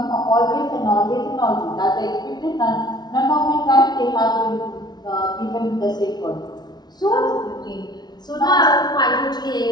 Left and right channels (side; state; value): right; late; 0.20 ms